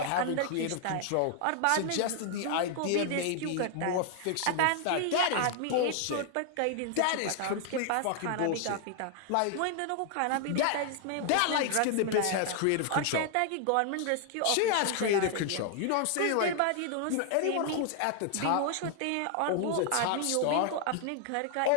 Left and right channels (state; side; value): different; both; correlation 0.00